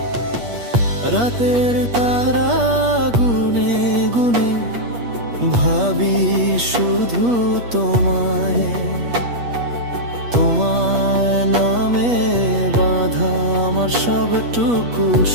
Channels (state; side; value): late; left; 8.4 ms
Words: রাতের তারা গুনে গুনে ভাবি শুধু তোমায়, তোমার নামে বাঁধা আমার সবটুকু